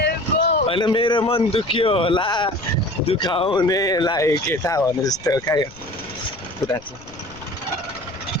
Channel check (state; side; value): noise; left; rumble, 22 dB below the sound